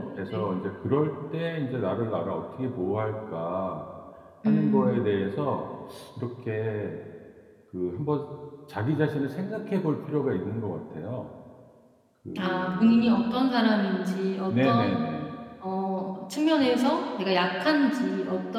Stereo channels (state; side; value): identical; both; correlation 1.00